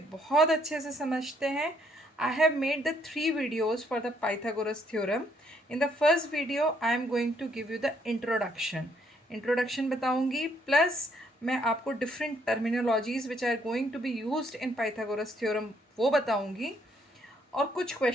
बहुत अच्छे से समझते हैं. I have made the 3 videos for the Pythagoras theorem. In the first video I am going to give you the introduction बताऊंगी, प्लस मैं आपको different terminologies which are going to be used in Pythagoras theorem वो बताऊंगी, और कुछ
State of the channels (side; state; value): both; normal; correlation 0.70